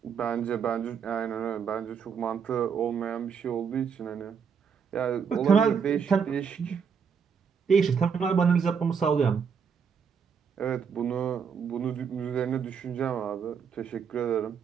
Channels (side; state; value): left; quieter; 6.6 dB